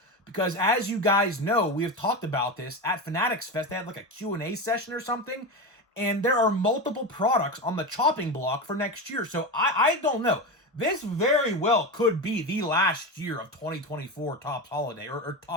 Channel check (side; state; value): both; normal; correlation 0.20